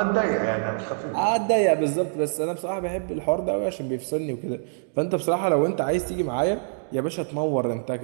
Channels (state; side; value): silent; left; digital silence